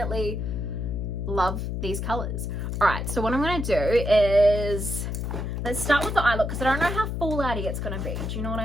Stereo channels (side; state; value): left; noise; hum, 3 dB below the sound